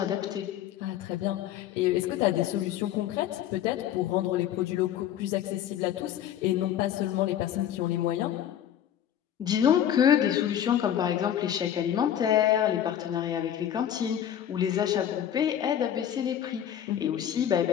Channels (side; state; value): right; quieter; 10.4 dB